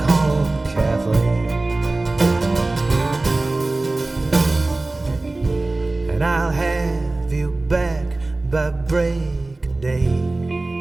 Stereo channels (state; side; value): quieter; left; 3.0 dB